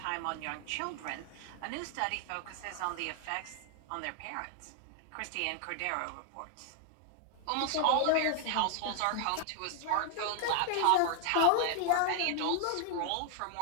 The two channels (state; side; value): different; both; correlation 0.00